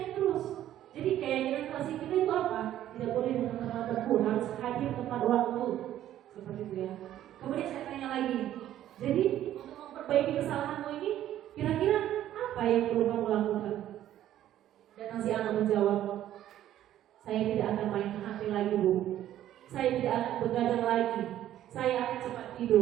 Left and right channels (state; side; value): quieter; left; 12.3 dB